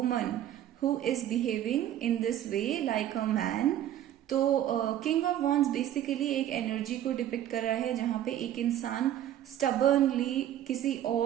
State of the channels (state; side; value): quieter; left; 11.7 dB